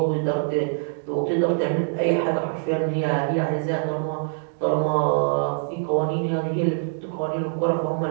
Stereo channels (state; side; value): silent; left; digital silence